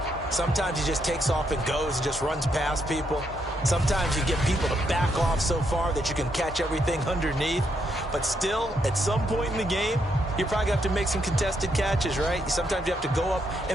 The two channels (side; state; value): both; normal; correlation 0.77